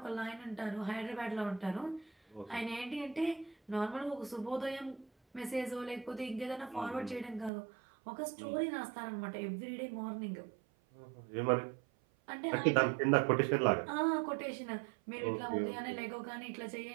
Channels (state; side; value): drops out; left; at 7.5 s